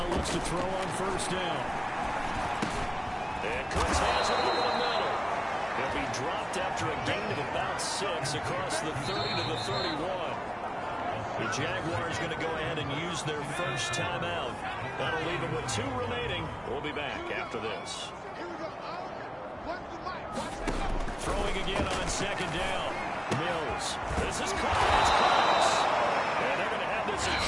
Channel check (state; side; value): identical; both; correlation 1.00